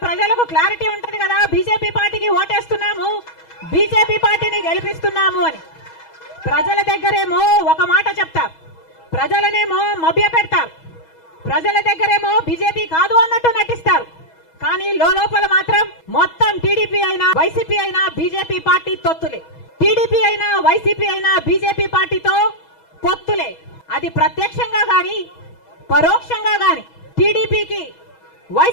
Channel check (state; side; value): late; right; 6.2 ms